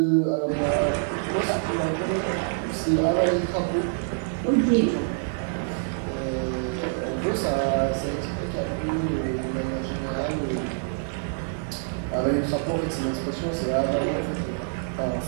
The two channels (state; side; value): silent; left; digital silence